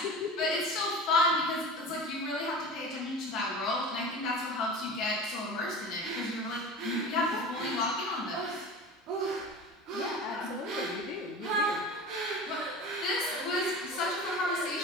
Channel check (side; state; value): both; normal; correlation 0.33